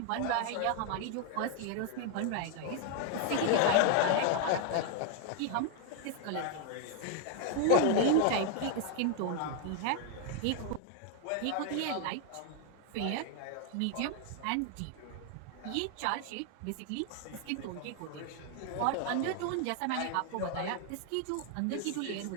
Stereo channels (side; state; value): both; different; correlation 0.00